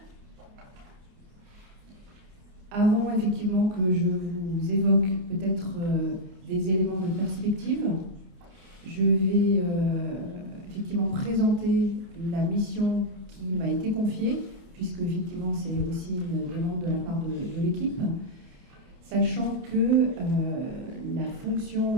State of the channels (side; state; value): left; late; 29 ms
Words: Avant effectivement que je vous évoque peut-être des éléments de perspective, je vais effectivement présenter la mission qui m'a été confiée, puisque effectivement c'est aussi une demande de la part de l'équipe, sachant que la fonction,